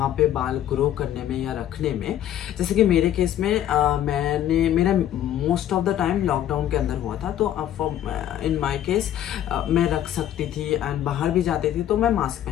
पे बाल ग्रो करने में या रखने में, जैसे कि मेरे केस में मेरा most of the time lockdown के अंदर हुआ था, तो इन माई केस मैं रख सकती थी एंड बाहर भी जाती थी तो मैं मास्क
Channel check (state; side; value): quieter; right; 11.5 dB